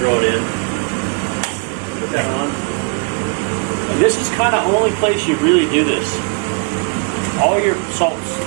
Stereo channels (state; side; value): quieter; left; 36.9 dB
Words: it in. Put that on. And this is kind of the only place you really do this. All your salts